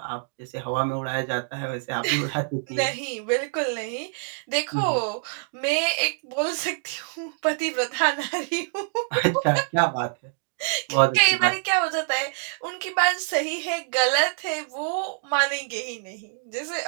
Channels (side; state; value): left; silent; digital silence